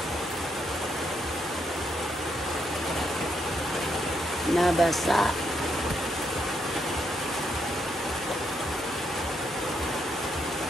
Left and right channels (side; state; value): both; normal; correlation 0.78